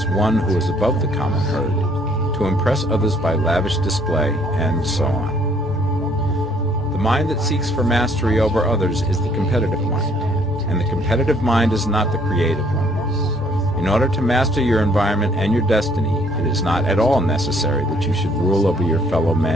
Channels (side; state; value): both; normal; correlation 0.63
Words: one who is above the common herd, to impress others by lavish display, and so on. The mind that seeks for mastery over others is the competitive mind, and the competitive mind is not the creative one. In order to master your environment and your destiny, it is not at all necessary that you should rule over your fellow